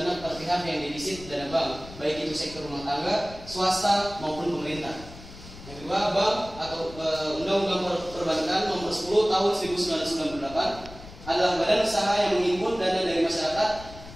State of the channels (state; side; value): noise; left; rumble, 16 dB below the sound